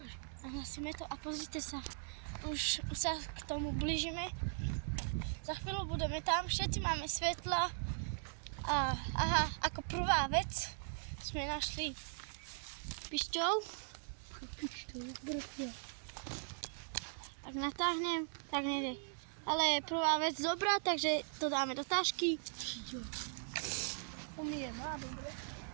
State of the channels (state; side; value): silent; left; digital silence